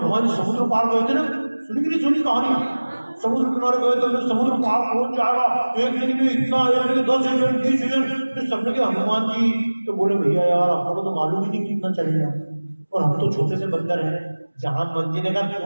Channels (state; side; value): inverted; both; correlation -1.00